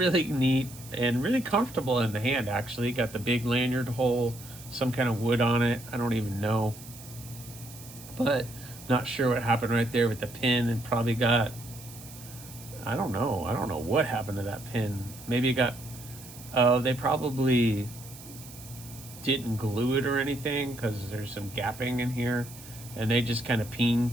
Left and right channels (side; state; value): right; noise; hiss, 17 dB below the sound